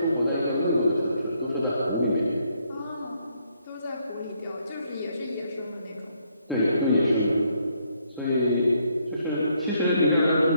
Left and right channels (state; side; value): inverted; both; correlation -0.72